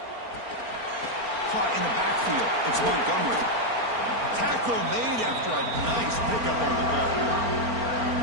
Caught in the backfield. It's Montgomery. Tackle made after a nice pickup on the ball.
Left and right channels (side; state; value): left; late; 4.4 ms